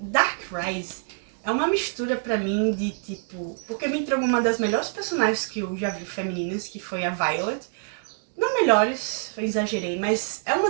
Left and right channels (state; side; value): silent; left; digital silence